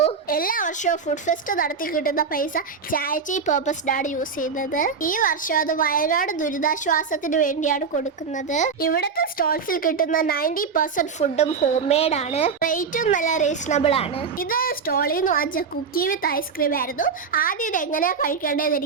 എല്ലാ വർഷവും ഫുഡ് ഫെസ്റ്റ് നടത്തി കിട്ടുന്ന പൈസ ചാരിറ്റി പർപ്പസിനാണ് യൂസ് ചെയ്യുന്നത്. ഈ വർഷം അത് വയനാട് ദുരിതാശ്വാസത്തിന് വേണ്ടിയാണ് കൊടുക്കുന്നത്. ഇവിടുത്തെ സ്റ്റോൾസിൽ കിട്ടുന്ന 90% ഫുഡും ഹോം മെയ്ഡ് ആണ്. റേറ്റും നല്ല റീസണബിൾ ആണ്. ഇത് സ്റ്റോളിൽ നിന്ന് വാങ്ങിച്ച കുക്കി വിത്ത് ഐസ്ക്രീം ആയിരുന്നു. ആദ്യം ഇത് എങ്ങനെയാ കഴിക്കേണ്ടതെന്ന്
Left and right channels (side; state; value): left; quieter; 5.5 dB